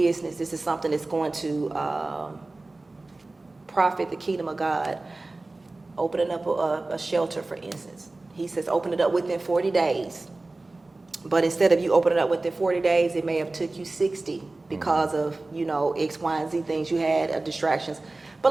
this is something that's going to profit the kingdom of God. Opening up a shelter, for instance. He says open it up within 40 days. But instead of you opening it up within 40 days, it may have took you 60 because of, X, Y, and Z things you had, distractions. But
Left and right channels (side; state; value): left; quieter; 3.1 dB